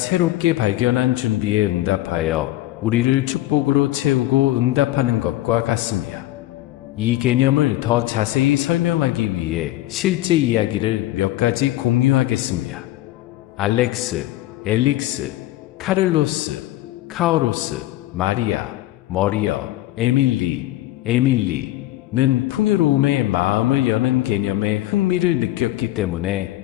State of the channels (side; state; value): right; quieter; 15.9 dB